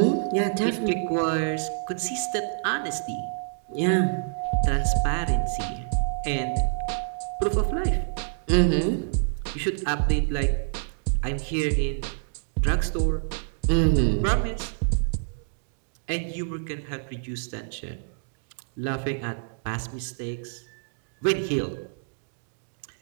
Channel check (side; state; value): left; silent; digital silence